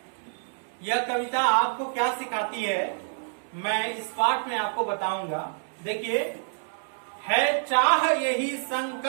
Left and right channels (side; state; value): left; silent; 60 dB below the other